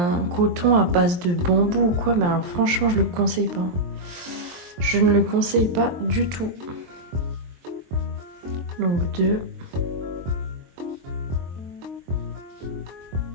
coton à base de bambou ou quoi. Mais alors, franchement, je le conseille pas. Je ne le conseille pas du tout. Donc, 2.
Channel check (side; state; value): left; late; 23 ms